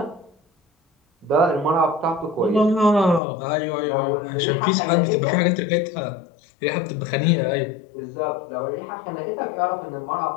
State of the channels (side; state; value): right; drops out; at 3.2 s